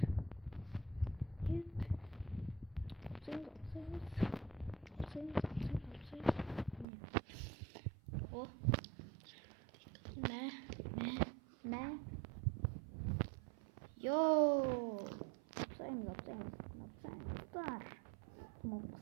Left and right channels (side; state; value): left; drops out; at 6.9 s